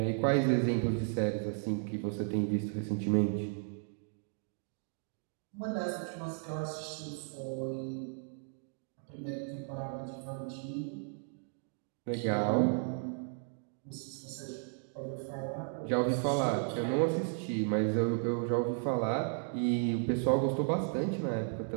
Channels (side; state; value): left; silent; 55 dB below the other